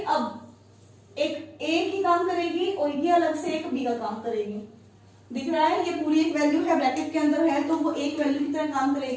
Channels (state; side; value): identical; both; correlation 1.00